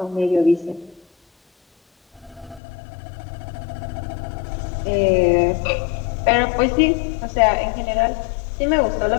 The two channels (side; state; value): right; drops out; at 2.6 s